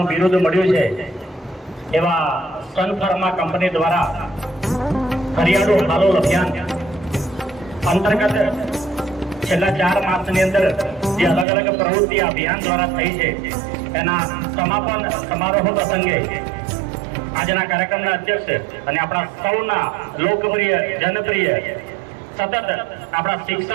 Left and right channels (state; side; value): drops out; left; at 11.5 s